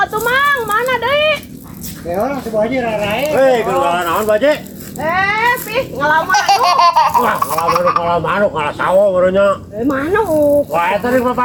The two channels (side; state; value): both; identical; correlation 1.00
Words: atuh Mang, mana deui? Ya orang si bu haji rarae. Hei, keluaran naon baje? Pih, ngalaman atuh. Wah, ngalah sawo barunya. Manuk. Wah, eta di